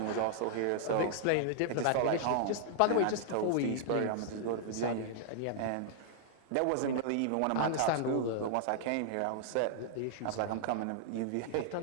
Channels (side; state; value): both; different; correlation -0.01